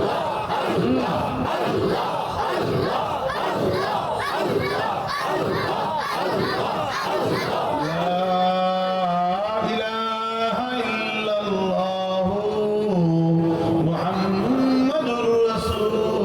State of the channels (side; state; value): both; identical; correlation 1.00